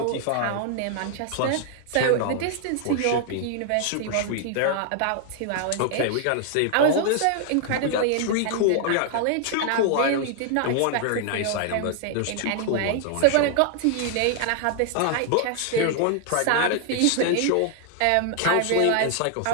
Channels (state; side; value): different; both; correlation 0.00